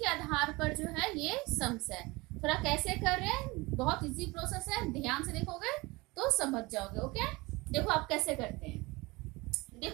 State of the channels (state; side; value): quieter; left; 23.2 dB